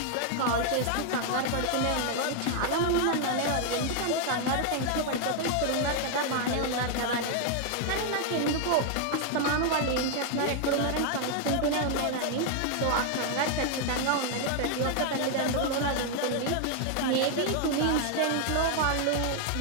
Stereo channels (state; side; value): different; both; correlation 0.00